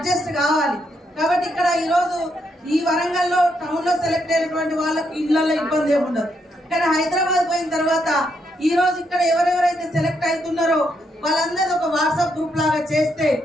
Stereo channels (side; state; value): both; normal; correlation 0.77